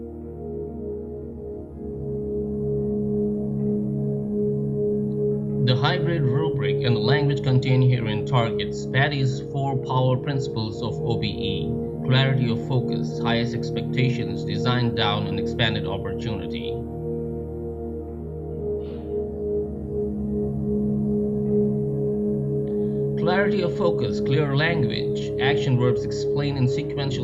The hybrid rubric and the language contained herein targets Patty's 4 power principles of OBE: clarity of focus, highest expectations, design down, and expanded opportunity. Clarity of focus, clear language, action verbs explained in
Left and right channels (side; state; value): both; identical; correlation 1.00